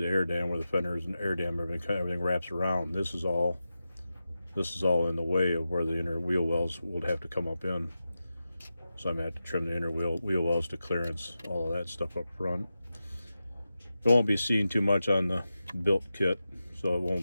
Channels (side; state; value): both; inverted; correlation -0.91